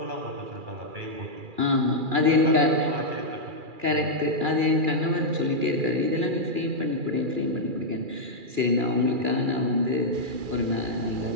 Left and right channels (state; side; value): late; left; 2.4 ms